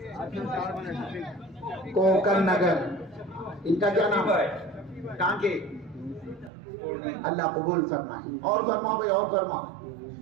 کوکر نگر. ان کا کیا نام ہے؟ کہاں کے؟ اللہ قبول فرمائے. اور فرماؤ بھائی، اور فرماؤ.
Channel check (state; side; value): drops out; left; at 6.5 s